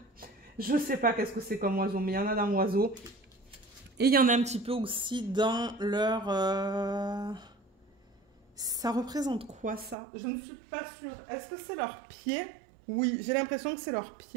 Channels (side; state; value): left; drops out; at 10.0 s